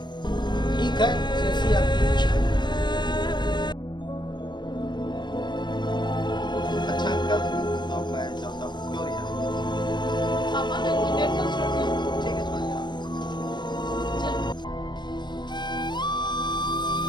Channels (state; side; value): late; right; 0.21 ms